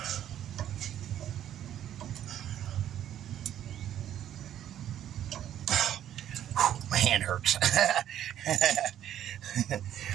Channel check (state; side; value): quieter; left; 11.0 dB